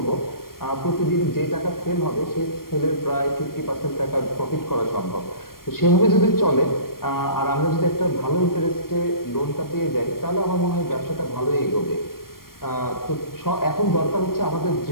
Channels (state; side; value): late; right; 0.92 ms